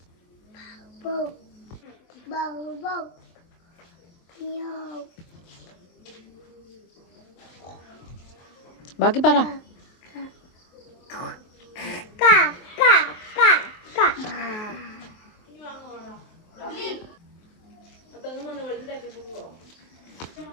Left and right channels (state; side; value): late; right; 23 ms